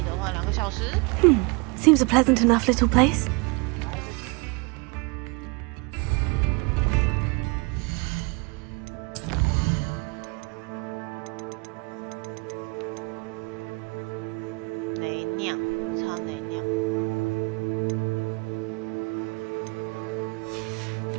的话，2个小时。Seems a pleasant enough little place. 雷酿，超雷酿。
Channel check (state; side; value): quieter; left; 29.1 dB